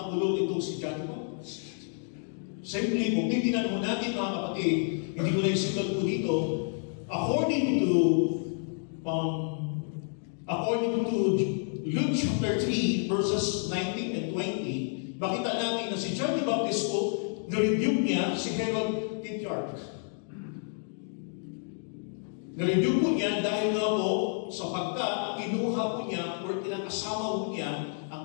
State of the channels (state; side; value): silent; right; 58 dB below the other